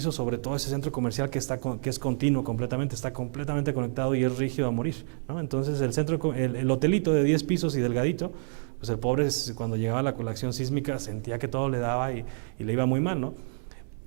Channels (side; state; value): left; silent; digital silence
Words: sobre todo ese centro comercial que es continuo completamente, está completamente conectado y es rígido a morir, ¿no? Entonces el hotelito de 10 pisos y delgadito, pues el pobre cuando llegaba la acción sísmica sentía que todo le daba y le iba muy mal, ¿no?